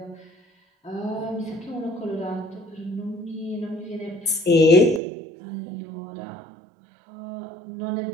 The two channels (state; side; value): drops out; left; at 5.0 s